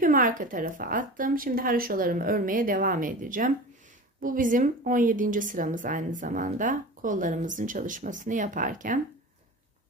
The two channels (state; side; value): normal; both; correlation 0.34